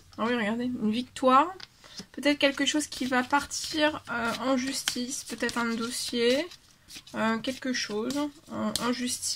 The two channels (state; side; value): identical; both; correlation 1.00